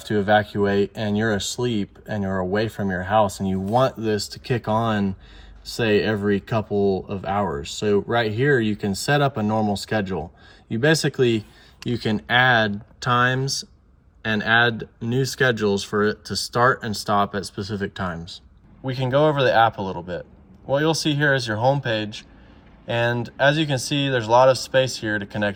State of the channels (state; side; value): identical; both; correlation 1.00